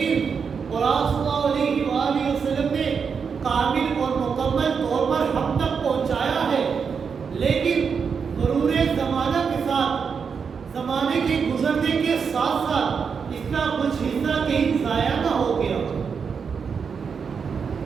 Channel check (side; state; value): left; quieter; 6.1 dB